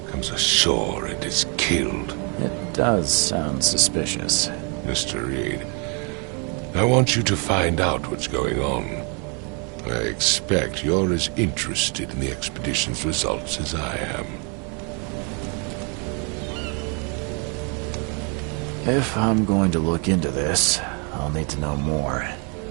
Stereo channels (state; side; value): quieter; left; 36.1 dB